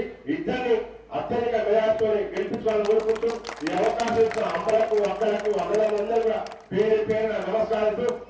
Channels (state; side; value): identical; both; correlation 1.00